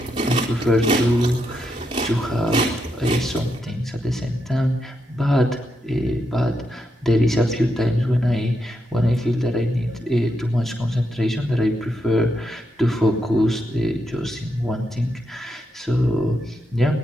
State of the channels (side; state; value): both; normal; correlation 0.82